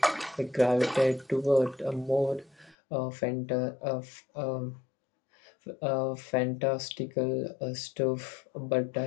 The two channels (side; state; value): right; drops out; at 2.8 s